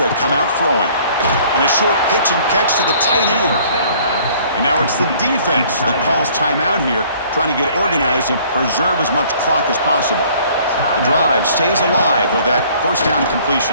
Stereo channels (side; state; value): both; inverted; correlation -0.56